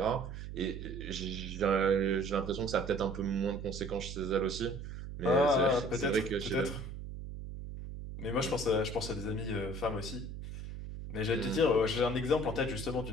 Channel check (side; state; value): right; noise; hum, 9 dB below the sound